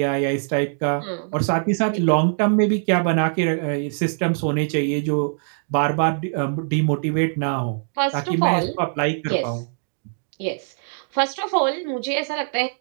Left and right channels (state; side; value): silent; left; digital silence